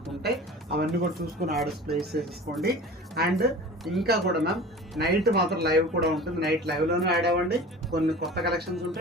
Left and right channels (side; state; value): both; normal; correlation 0.38